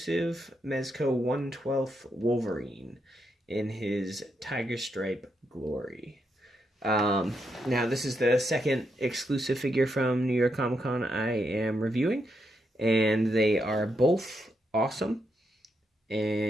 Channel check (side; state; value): both; normal; correlation 0.81